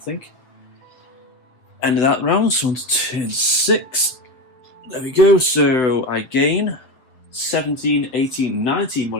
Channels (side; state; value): right; late; 7.3 ms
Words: End of that round, so on to turn 6. There we go, so I gain 17, 18, 19